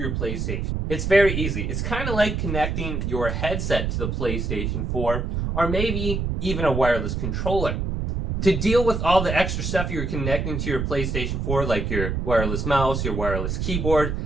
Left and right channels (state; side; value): noise; right; rumble, 2 dB below the sound